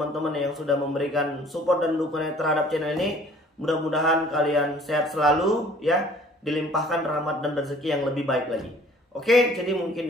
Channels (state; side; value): normal; both; correlation 0.53